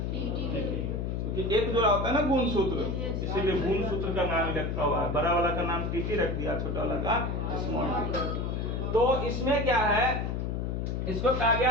क्योंकि एक जोड़ा होता है ना गुणसूत्र, इसीलिए गुणसूत्र का नाम लिखा हुआ है। बड़ा वाला का नाम टीटी रख दिया, छोटा वाला का स्मॉल टीटी। तो इसमें क्या है, इसको कहा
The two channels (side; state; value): left; noise; hum, 1 dB below the sound